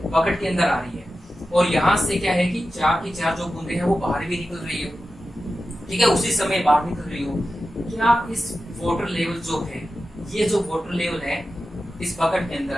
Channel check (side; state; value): both; normal; correlation 0.92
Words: बकेट के अंदर आ रही है। और यहाँ से क्या है कि 4 की 4 जो बूंदे हैं वो बाहर भी निकल रही हो, ठीक है, उसी समय बाहर निकल रही हो। क्या इस वाटर लेवल जो है, ये जो वाटर लेवल है इस बकेट के